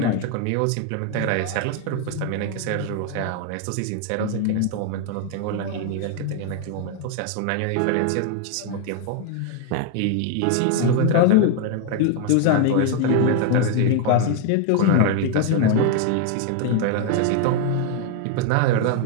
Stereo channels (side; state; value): both; different; correlation 0.00